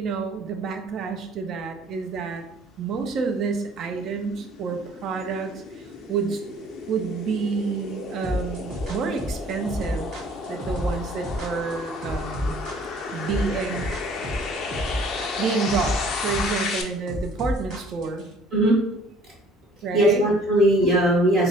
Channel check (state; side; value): normal; both; correlation 0.55